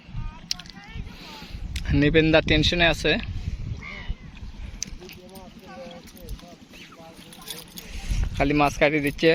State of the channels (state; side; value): identical; both; correlation 1.00